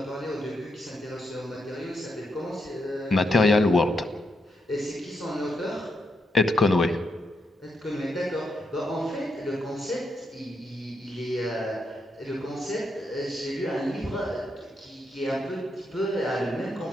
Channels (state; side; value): normal; both; correlation 0.81